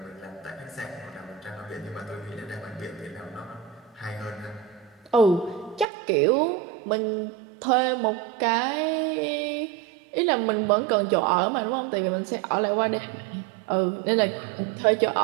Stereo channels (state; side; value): drops out; left; at 5.9 s